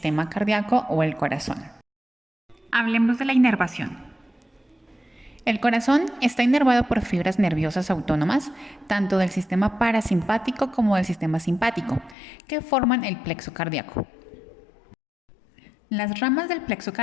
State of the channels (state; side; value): drops out; right; at 12.2 s